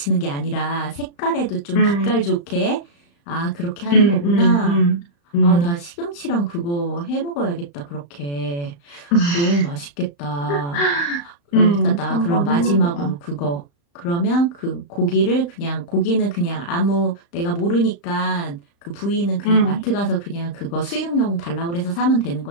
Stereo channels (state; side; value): late; right; 35 ms